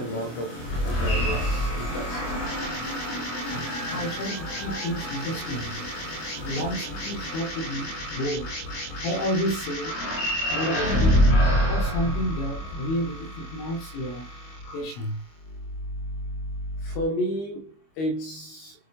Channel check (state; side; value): late; right; 25 ms